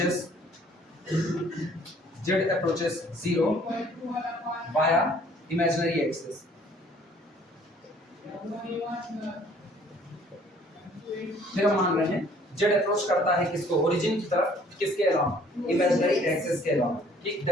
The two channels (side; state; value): both; normal; correlation 0.57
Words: approaches 0 via imaginary axis। फिर हम मान रहे हैं z अप्रोच करता है किसको, ओरिजिन की तरफ, किसके अलावा, इमेजिनरी एक्सिस के अलावा, ठीक,